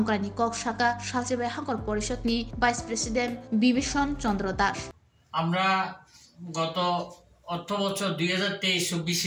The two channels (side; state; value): both; identical; correlation 1.00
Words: kok saka salchibai hangkor porishod ni vice president bibishon chandra das আমরা গত অর্থ বছর